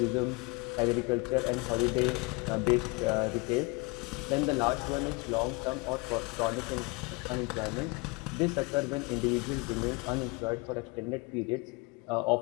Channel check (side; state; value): right; quieter; 27.8 dB